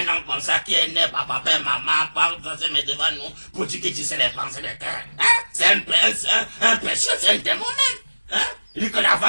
homme comme ça qui est né par papa et maman, par mais devant nous, pour dire qu'il disait les pensées de cœur. Hein? C'est un péché, c'est un démon même. Hein? Il dit que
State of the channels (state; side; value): inverted; both; correlation -1.00